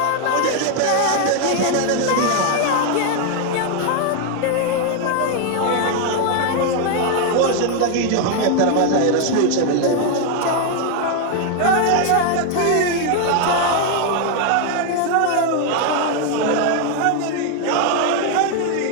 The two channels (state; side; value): different; both; correlation 0.01